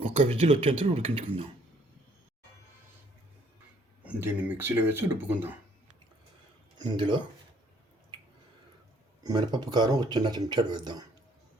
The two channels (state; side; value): normal; both; correlation 0.62